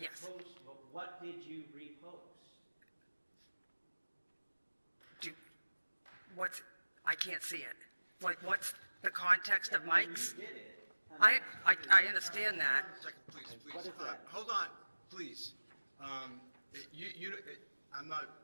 Yes. post, well, what did you repost? I can't see it. Like, what's the context of Mike's? You did it. I understand that. Second, please, please. What is that? Hold on, please. I'm not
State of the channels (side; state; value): both; inverted; correlation -1.00